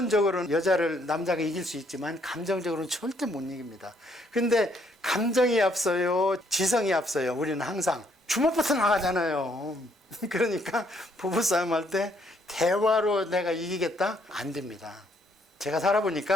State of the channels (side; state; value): both; normal; correlation 0.69